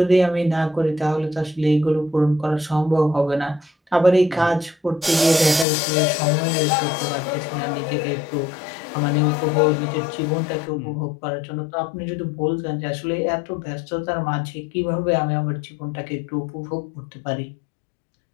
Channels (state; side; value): drops out; right; at 5.7 s